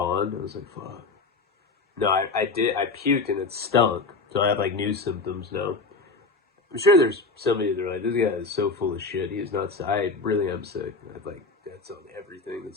I was like, fuck. No, I did. I puked and it stunk. So I have like new symptoms now. I'm sure there's somebody that's like, this guy is so full of shit. He's not. I really am sick. That's on everything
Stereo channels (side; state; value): right; quieter; 3.9 dB